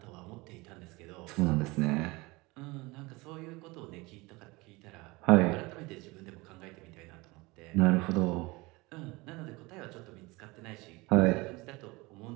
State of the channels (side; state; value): left; quieter; 23.7 dB